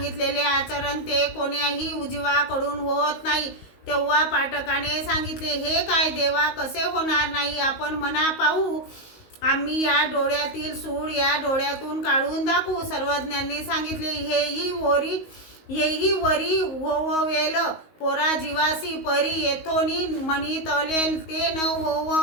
आचरण ते कोण्याही उजवाकडून होत नाही. तेव्हा पाठकाने सांगितले, हे काय देवा, कसे होणार नाही? आपण म्हणा पाहू. आम्ही या डोळ्यातील सूळ या डोळ्यातून काढून दाखवू. सर्वज्ञांनी सांगितले, हेही वरी होववेल पोरा जीवासी परी येथोनी म्हणितले ते न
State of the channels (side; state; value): right; late; 19 ms